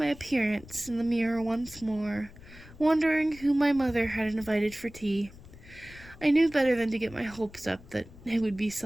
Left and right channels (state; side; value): noise; left; rumble, 19 dB below the sound